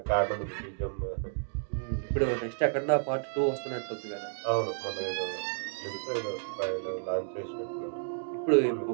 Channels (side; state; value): left; silent; digital silence